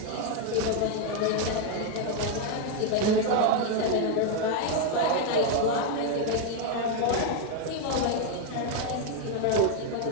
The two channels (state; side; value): different; both; correlation 0.01